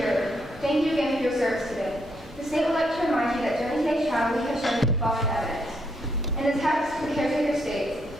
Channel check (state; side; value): normal; both; correlation 0.76